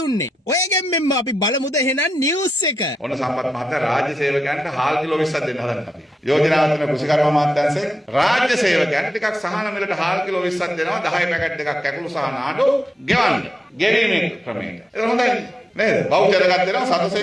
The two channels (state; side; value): normal; both; correlation 0.87